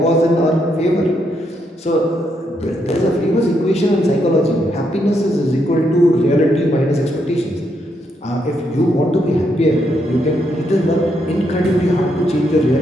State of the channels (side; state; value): both; normal; correlation 0.78